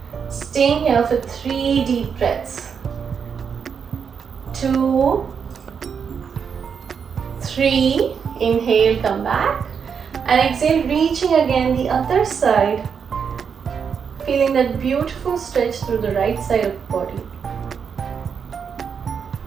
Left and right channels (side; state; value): left; quieter; 6.7 dB